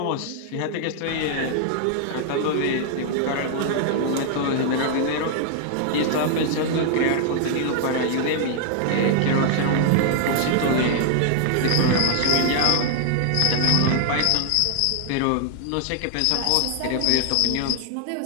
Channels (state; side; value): different; both; correlation 0.00